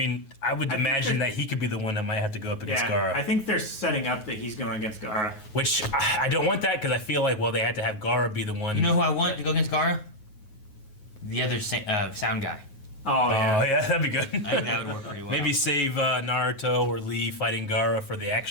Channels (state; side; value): late; right; 9.4 ms